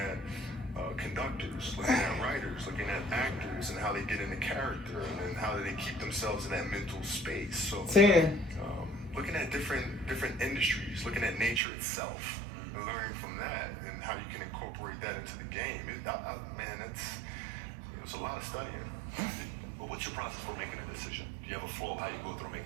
conductors, looking at writers, looking at actors, and how they get into character, and then how do they keep themselves in that mental space. So, 10. looking at different industries, looking at nature itself, and learning from that, and how you can incorporate that into the game. Man, it's a lot of studying. But what's your process for making a decision? Do you have a flow? How you go through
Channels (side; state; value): left; drops out; at 11.6 s